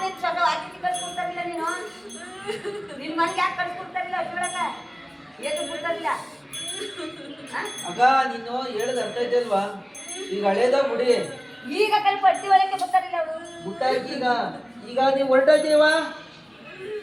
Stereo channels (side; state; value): both; identical; correlation 1.00